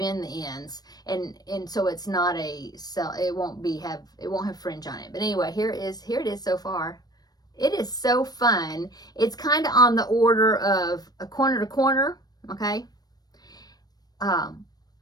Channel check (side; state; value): right; late; 0.19 ms